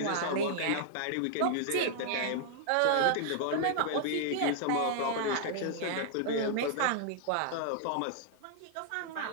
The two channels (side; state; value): both; different; correlation -0.01